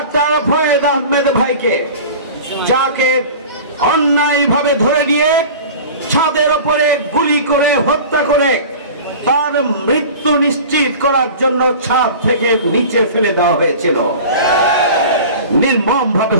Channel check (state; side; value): inverted; both; correlation -0.38